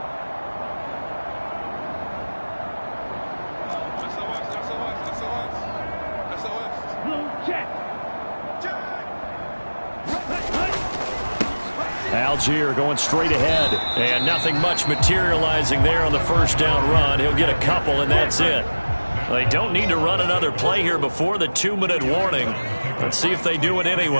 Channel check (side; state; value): both; inverted; correlation -1.00